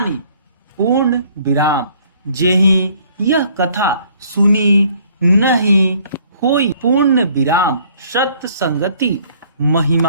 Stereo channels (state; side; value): inverted; both; correlation -0.60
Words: पूर्ण विराम। जेहि यह कथा सुनी नहीं होई। पूर्ण विराम। सत्य संगति